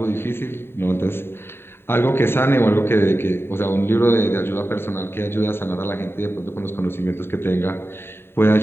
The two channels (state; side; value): late; right; 0.11 ms